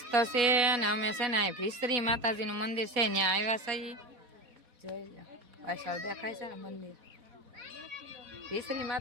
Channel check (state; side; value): late; left; 4.1 ms